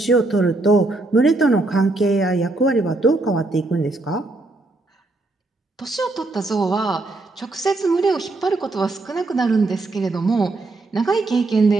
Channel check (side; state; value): left; quieter; 3.1 dB